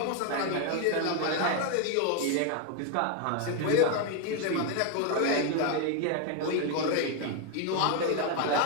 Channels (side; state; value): both; different; correlation 0.01